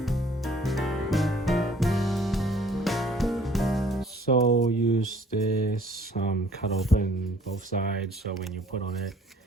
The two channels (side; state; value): both; normal; correlation 0.57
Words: So use this cut open both sides, so when you put on it,